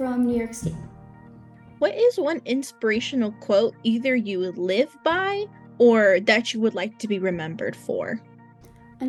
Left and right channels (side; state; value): both; identical; correlation 1.00